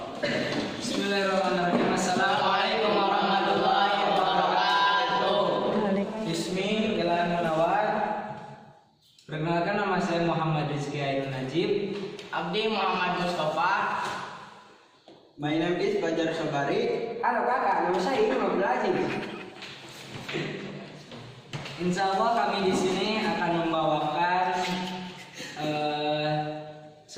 Bismillahirrahmanirrahim. Assalamualaikum warahmatullahi wabarakatuh. Bismi Jalan Munawar. Perkenalkan, nama saya Muhammad Rizky Ainun Najib. Abdi Muhammad Mustafa. My name is Fajar Sabari. Halo kakak, nama saya Imam Abdul. Insya Allah kami di sini akan membawakan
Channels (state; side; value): identical; both; correlation 1.00